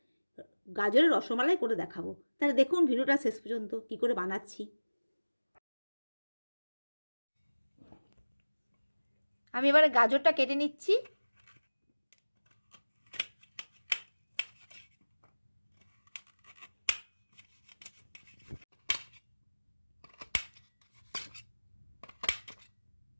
গাজরের রসমালাই করে দেখাবো। তাহলে দেখুন ভিডিওটা শেষ পর্যন্ত কি করে বানাচ্ছি। আমি এবারে গাজরটা কেটে নিচ্ছি।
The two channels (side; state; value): both; inverted; correlation -1.00